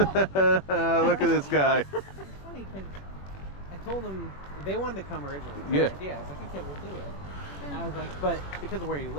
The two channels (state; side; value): late; right; 21 ms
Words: at this guy. It's funny because I told them they wanted to come originally. Yeah. I was like, okay, we'll do it. And I was like, but because of where you